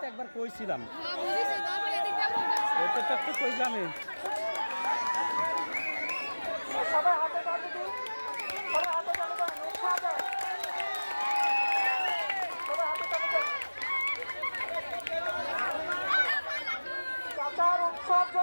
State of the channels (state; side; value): inverted; both; correlation -1.00